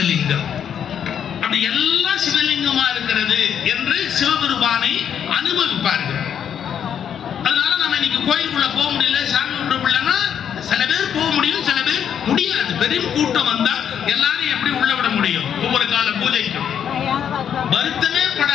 அப்படி எல்லாம் சிவலிங்கமா இருக்கிறது என்று சிவபெருமானை அனுபவிப்பார்கள். அதனால நம்ம இன்னைக்கு கோயிலுக்குள்ள போக முடியல, சாமி கும்பிட முடியலன்னா சில பேர் போக முடியும், சில பேர் முடியாது. பெரும் கூட்டம் வந்தா எல்லாரும் எப்படி உள்ள விட முடியும்? ஒவ்வொரு கால பூஜைக்கும் வருத்தமே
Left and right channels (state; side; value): quieter; right; 8.6 dB